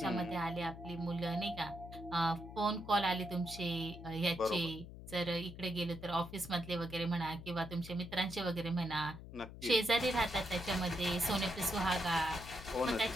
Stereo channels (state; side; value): noise; left; hum, 13 dB below the sound